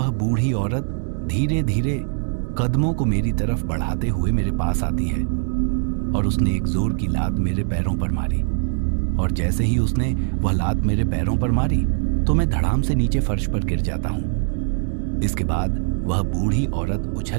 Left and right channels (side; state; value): left; silent; digital silence